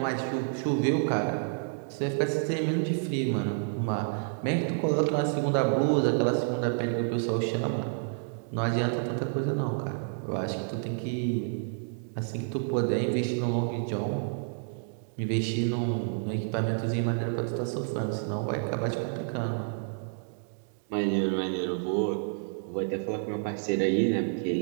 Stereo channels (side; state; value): left; silent; digital silence